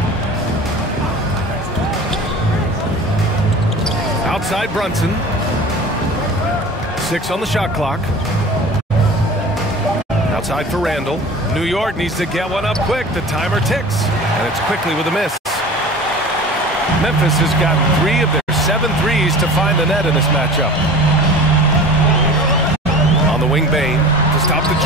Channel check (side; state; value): both; normal; correlation 0.38